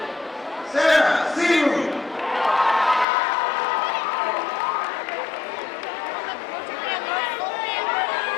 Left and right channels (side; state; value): right; drops out; at 3.1 s